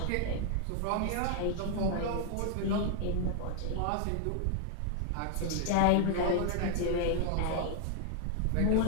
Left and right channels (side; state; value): both; different; correlation 0.00